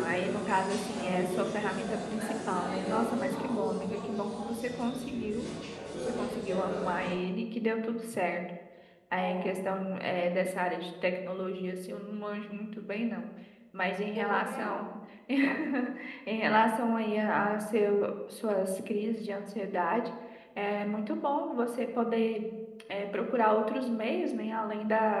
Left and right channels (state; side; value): identical; both; correlation 1.00